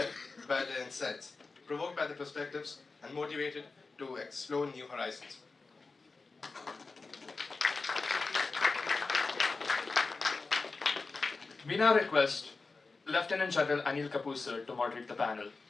by their insights, provoked by the perspectives, and motivated to explore new horizons. We now request Lieutenant General Anil Kapoor sir to moderate the panel.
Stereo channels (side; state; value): right; quieter; 4.0 dB